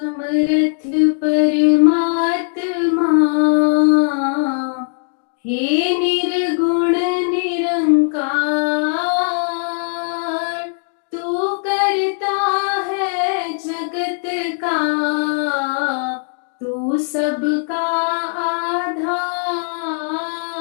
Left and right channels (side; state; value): right; silent; digital silence